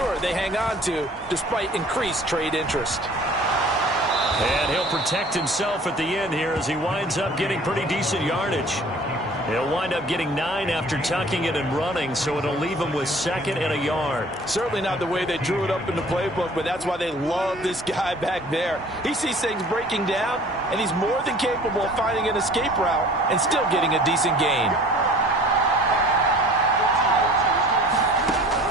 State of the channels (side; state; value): both; normal; correlation 0.49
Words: they hang on to despite increased trade interest. And he'll protect himself at the end here as he winds up getting pretty decent yardage. He'll wind up getting 9 after tucking it and running, so it'll leave him with second and a yard. Certainly not the way they drew it up in the playbook, but that's why they love this guy back there. He sees things breaking down, and he's more than capable of finding an escape route and still getting a decent gain.